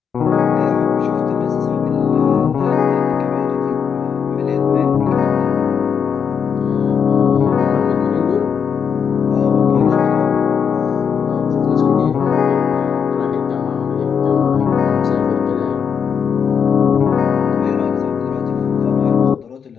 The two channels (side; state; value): right; quieter; 6.9 dB